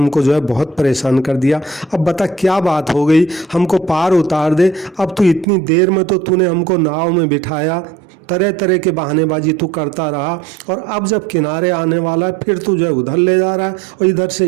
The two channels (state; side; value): drops out; left; at 5.5 s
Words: जो है बहुत परेशान कर दिया, अब बता क्या बात हो गई, हमको पार उतार दे। अब तू इतनी देर में तो तूने हमको नाव में बिठाया, तरह तरह के बहानेबाजी तू करता रहा, और अब जब किनारे आने वाला है फिर तू जो है उधर ले जा रहा है और इधर से